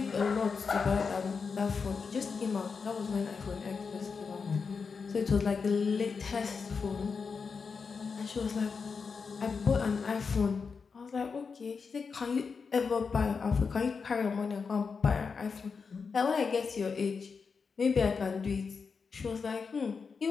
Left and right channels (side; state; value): right; quieter; 5.3 dB